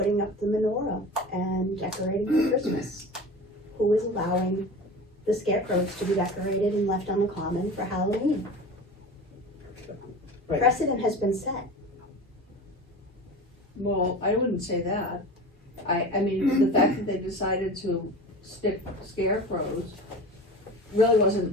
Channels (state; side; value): normal; both; correlation 0.34